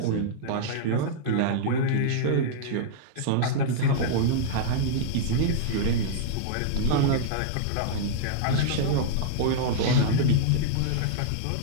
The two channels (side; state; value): both; different; correlation -0.02